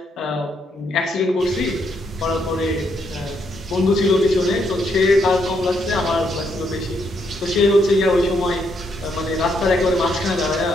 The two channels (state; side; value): normal; both; correlation 0.75